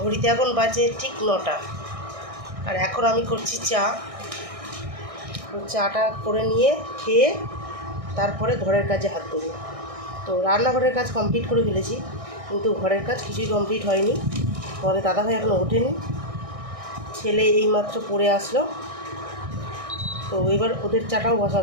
এখন বাজে ঠিক 9টা, আর এখন আমি করছি চা। চাটা করে নিয়ে খেয়ে তারপরে ঘরের কাজে হাত দেবো। তো রান্নাঘরের কাজ কমপ্লিট করে ফেলেছি, কিন্তু ঘরের কাজ কিছুই কমপ্লিট হয়নি। তোমাদের দাদাভাই এখনও ওঠেনি, ছেলে এইমাত্র পড়ে আসলো। তো এবার ওদের চাটাও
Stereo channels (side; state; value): left; late; 1.6 ms